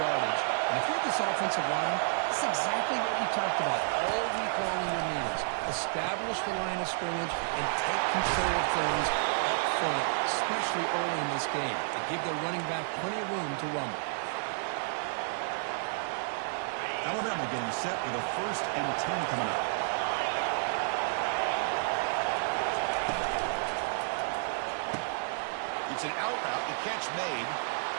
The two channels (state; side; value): silent; left; 57 dB below the other